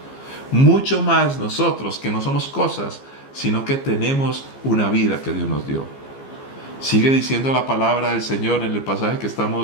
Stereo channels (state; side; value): late; right; 15 ms